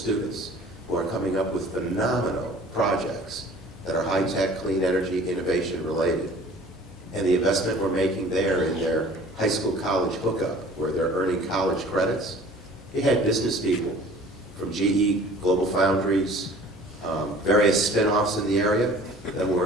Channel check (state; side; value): normal; both; correlation 0.48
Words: who are coming up with phenomenal projects that are high-tech, clean energy, innovation related. And the investment we're making there in their high school college hookup, where they're earning college credits, it had business people from GE, Global Foundries, various spin-offs in the area that